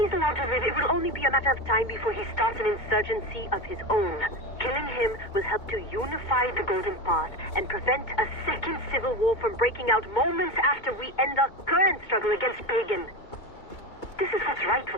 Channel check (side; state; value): right; late; 2.2 ms